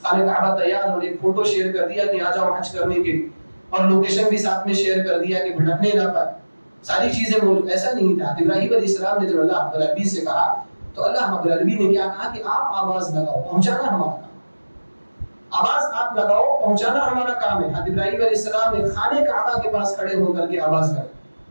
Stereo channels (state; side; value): inverted; both; correlation -1.00